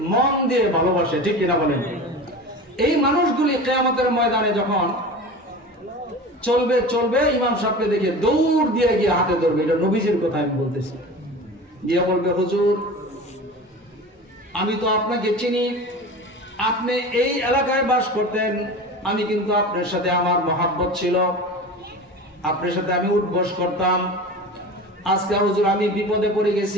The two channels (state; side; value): normal; both; correlation 0.33